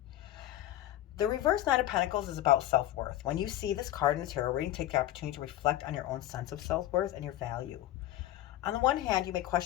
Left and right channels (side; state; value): right; quieter; 13.9 dB